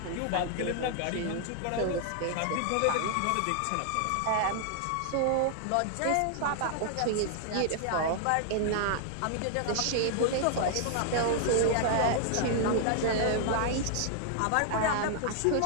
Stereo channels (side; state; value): both; different; correlation 0.00